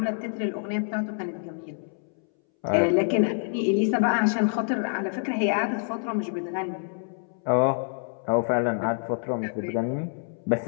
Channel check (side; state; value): right; silent; 60 dB below the other